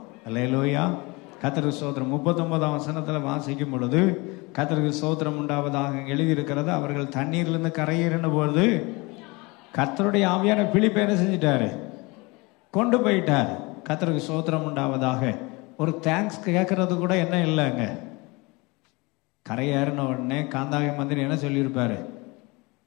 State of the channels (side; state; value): right; quieter; 25.6 dB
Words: அல்லேலூயா, கர்த்தருக்கு ஸ்தோத்திரம். 39ஆம் வசனத்துல வாசிக்கும் பொழுது கர்த்தருக்கு ஸ்தோத்திரம் உண்டாவதாக எழுதியிருக்கிறது. அவர்கள் தண்ணீர்லேருந்து கரையேறின பொழுது கர்த்தருடைய ஆவியான பிலிப்பை என்ன செஞ்சிட்டாரு? கொண்டு போயிட்டார். கர்த்தருக்கு ஸ்தோத்திரம் உண்டாவதாக. ஒரு தேங்க்ஸ் கேட்கறது கூட என்ன இல்லைங்க. கரையேறின உடனே காந்தாகை மந்திரி என்ன சொல்லியிருப்பாரு?